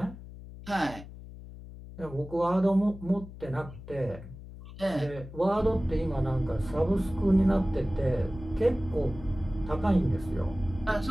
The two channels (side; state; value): left; noise; hum, 15 dB below the sound